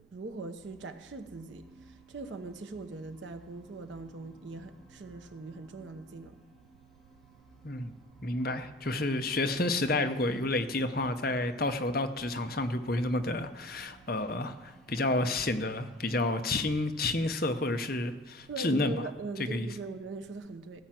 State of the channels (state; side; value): noise; right; rumble, 27 dB below the sound